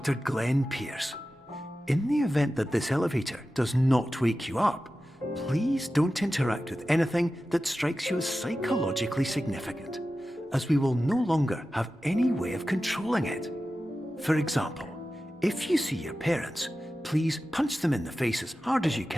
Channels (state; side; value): normal; both; correlation 0.94